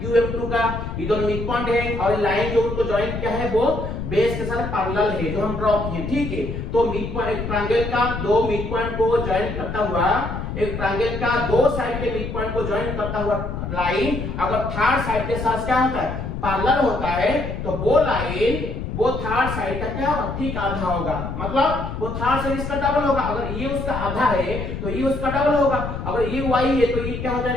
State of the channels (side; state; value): left; noise; rumble, 5 dB below the sound